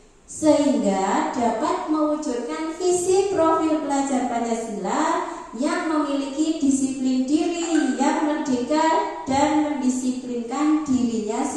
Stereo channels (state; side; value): identical; both; correlation 1.00